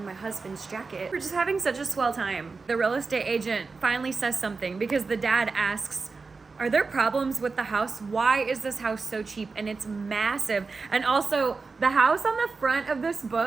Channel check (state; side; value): quieter; left; 4.3 dB